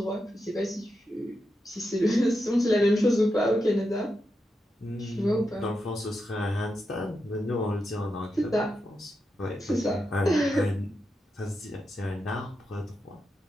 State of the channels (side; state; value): both; normal; correlation 0.87